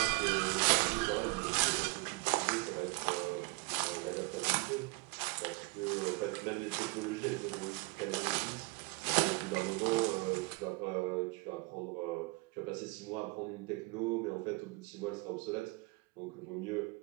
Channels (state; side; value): quieter; left; 26.6 dB